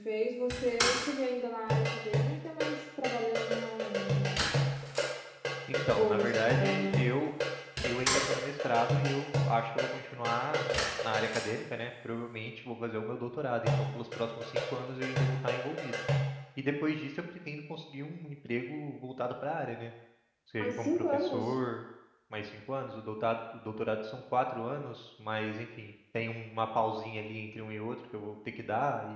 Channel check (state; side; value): identical; both; correlation 1.00